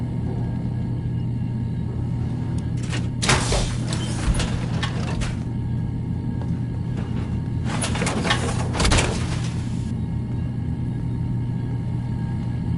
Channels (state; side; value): identical; both; correlation 1.00